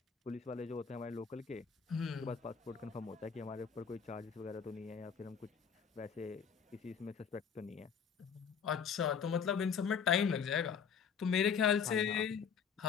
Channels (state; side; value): quieter; right; 6.9 dB